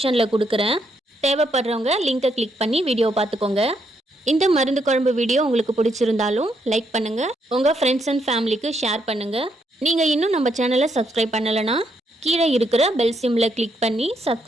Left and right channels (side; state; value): both; normal; correlation 0.76